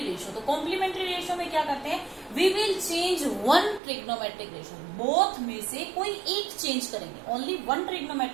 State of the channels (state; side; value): drops out; left; at 3.8 s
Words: ratio. तो कॉम्प्लीमेंट्री रेशियो में क्या करते हैं? We will change one trigonometric ratio. Both में से कोई एक चेंज करेंगे. Only one